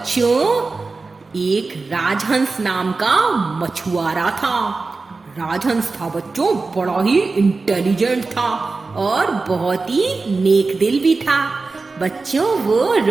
एक राजहंस नाम का मछुआरा था। राजहंस था बच्चों, बड़ा ही इंटेलिजेंट था और बहुत ही नेक दिल भी था। बच्चों, वो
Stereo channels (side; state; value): left; quieter; 3.9 dB